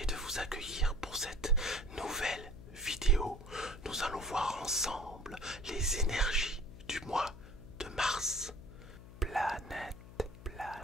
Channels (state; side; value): noise; left; hum, 16 dB below the sound